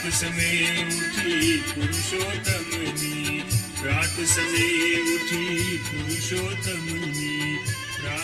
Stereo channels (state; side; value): identical; both; correlation 1.00